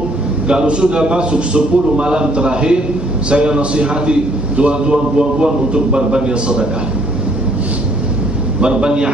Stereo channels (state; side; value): normal; both; correlation 0.64